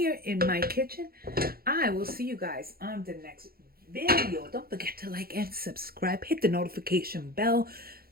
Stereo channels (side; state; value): left; late; 0.44 ms